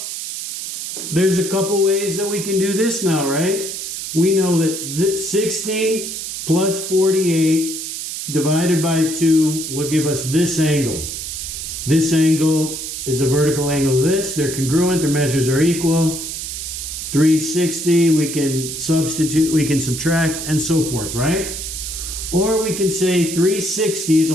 there's a couple ways that we can do this now, right? We know that 60 plus 48 divided by 2 will give us this angle. This angle is a vertical angle of this. They're congruent. Their measures are equal. 360, we can substitute, we can subtract, and so forth, right? Or we can say 360 is a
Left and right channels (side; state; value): right; noise; hiss, 6 dB below the sound